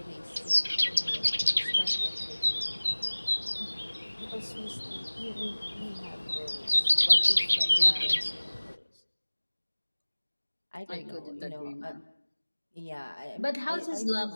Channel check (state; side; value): inverted; both; correlation -1.00